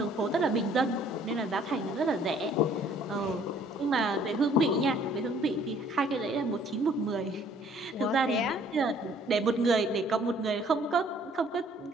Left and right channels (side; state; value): both; normal; correlation 0.59